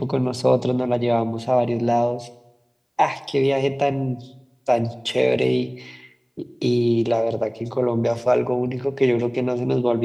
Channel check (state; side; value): identical; both; correlation 1.00